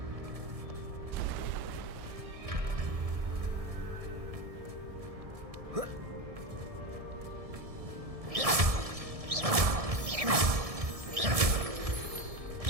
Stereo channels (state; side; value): late; left; 1.7 ms